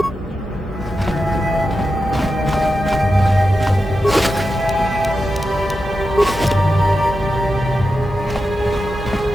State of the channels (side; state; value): both; normal; correlation 0.90